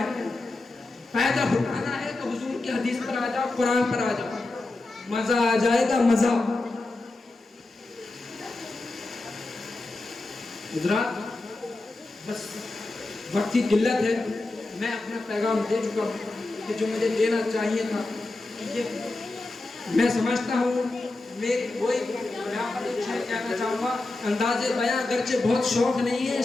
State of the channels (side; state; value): right; quieter; 3.1 dB